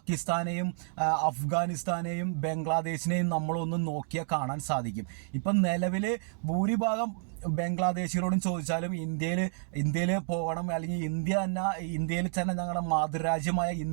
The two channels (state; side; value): silent; left; digital silence